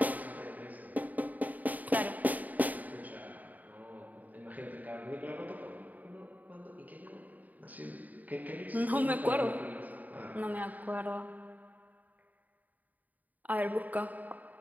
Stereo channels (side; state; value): left; late; 0.079 ms